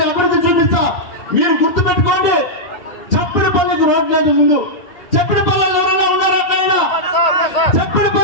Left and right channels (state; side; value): late; right; 1.8 ms